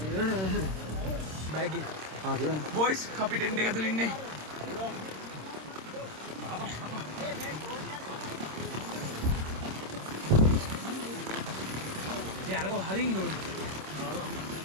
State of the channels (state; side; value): late; left; 26 ms